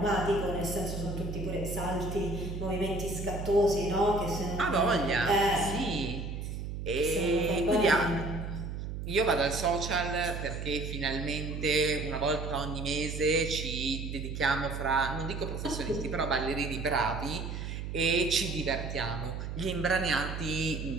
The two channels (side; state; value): right; noise; hum, 6 dB below the sound